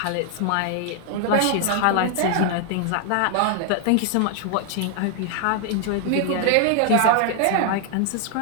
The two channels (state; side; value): different; both; correlation 0.00